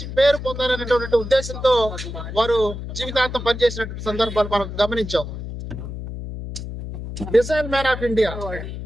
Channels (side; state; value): left; noise; hum, 8 dB below the sound